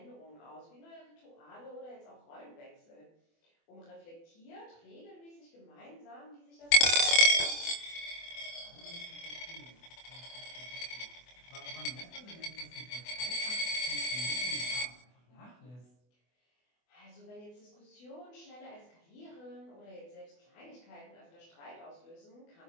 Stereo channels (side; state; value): right; late; 24 ms